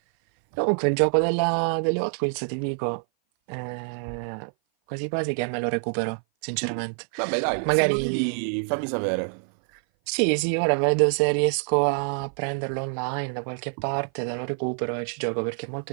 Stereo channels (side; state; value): left; silent; 57 dB below the other